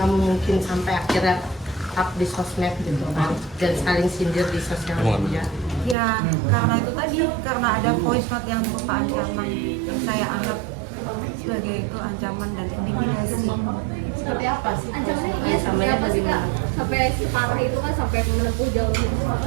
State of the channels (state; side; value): drops out; left; at 6.0 s